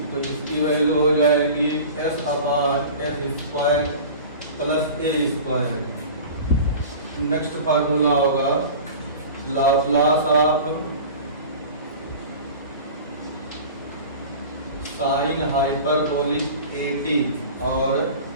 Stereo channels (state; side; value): inverted; both; correlation -0.38